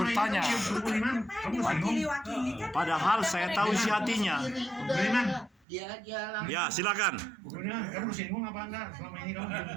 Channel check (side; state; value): left; drops out; at 5.7 s